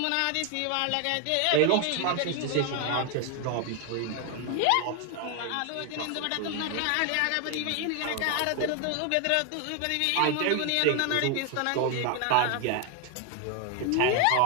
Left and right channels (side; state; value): both; different; correlation 0.01